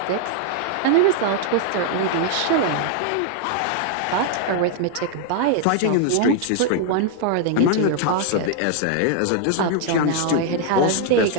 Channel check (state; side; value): different; both; correlation 0.00